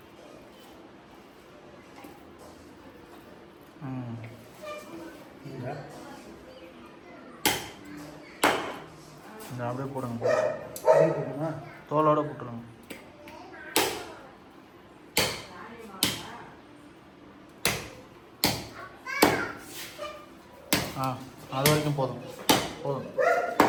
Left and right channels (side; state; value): both; identical; correlation 1.00